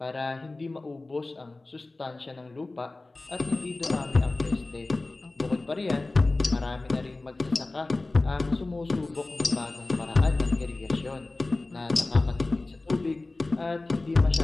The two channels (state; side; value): quieter; right; 3.2 dB